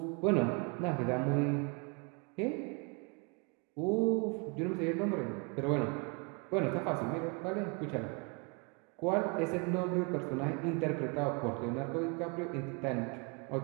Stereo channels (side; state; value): left; quieter; 32.2 dB